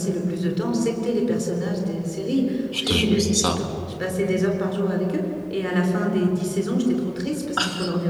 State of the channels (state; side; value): identical; both; correlation 1.00